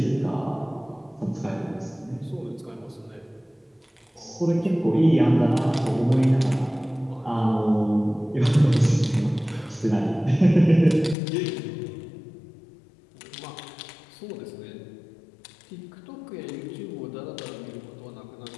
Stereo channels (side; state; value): right; drops out; at 11.2 s